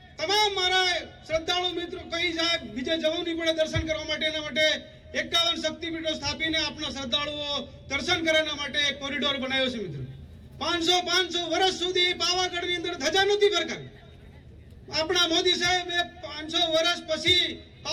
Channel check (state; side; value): identical; both; correlation 1.00